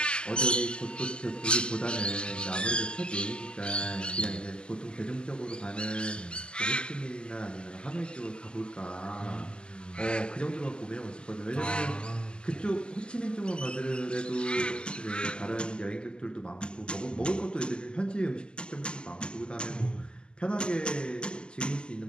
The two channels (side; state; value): right; late; 0.049 ms